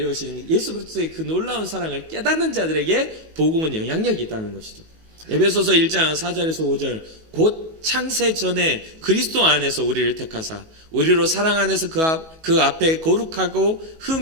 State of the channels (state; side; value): late; left; 19 ms